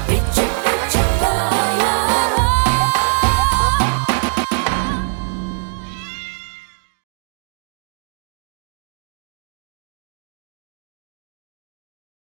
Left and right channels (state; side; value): silent; left; digital silence